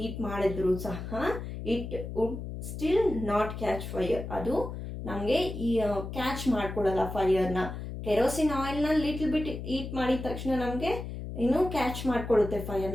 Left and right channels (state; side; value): noise; left; hum, 7 dB below the sound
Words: ಮಾಡಿದ್ರು ಸಹ it would still not catch fire, ಅದು ನಮಗೆ ಈ ಕ್ಯಾಚ್ ಮಾಡ್ಕೊಡಲ್ಲ ಫೈರ್ನ. ಕೆರೋಸಿನ್ ಆಯಿಲ್ನ ಲಿಟಲ್ ಬಿಟ್ ಹೀಟ್ ಮಾಡಿದ ತಕ್ಷಣ ನಮಗೆ ಇನ್ನೂ ಕ್ಯಾಚ್ ಮಾಡ್ಕೊಳ್ಳುತ್ತೆ